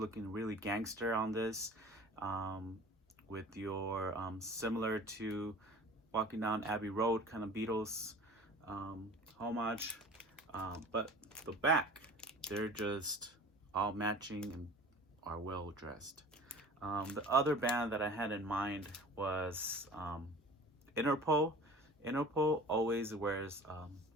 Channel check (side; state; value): both; normal; correlation 0.42